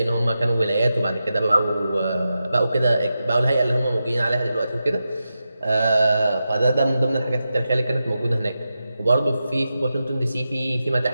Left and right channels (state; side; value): inverted; both; correlation -0.90